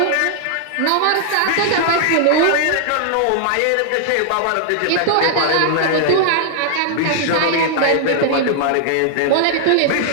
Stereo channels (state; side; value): different; both; correlation -0.01